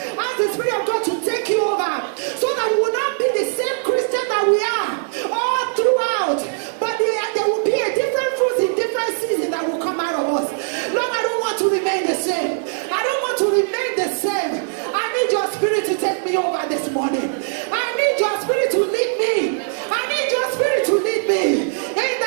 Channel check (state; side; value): silent; left; digital silence